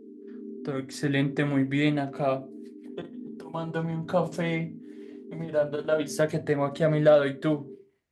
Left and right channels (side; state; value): both; identical; correlation 1.00